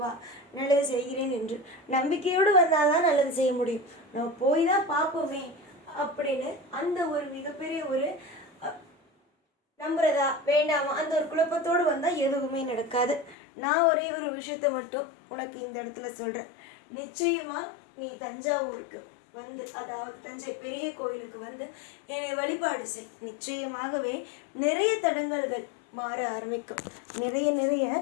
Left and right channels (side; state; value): right; drops out; at 13.4 s